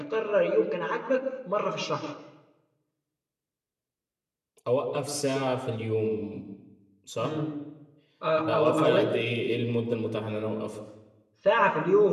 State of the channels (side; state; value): both; identical; correlation 1.00